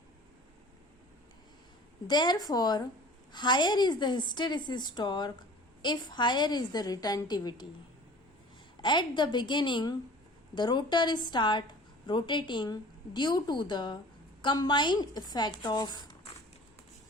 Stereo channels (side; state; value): both; normal; correlation 0.44